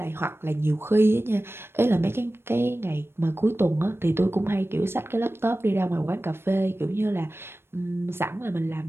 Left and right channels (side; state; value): left; late; 0.12 ms